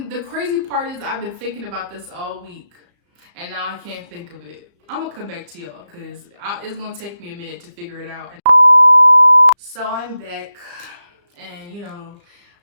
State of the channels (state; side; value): late; left; 34 ms